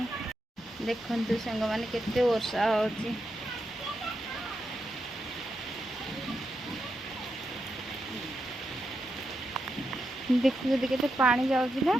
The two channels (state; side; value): normal; both; correlation 0.85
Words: देखु सांग मैंने केते वर्षा हो देखु केते पानी जाऊँगी ना